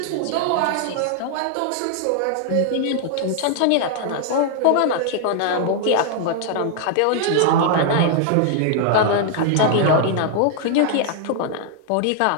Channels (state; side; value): different; both; correlation 0.00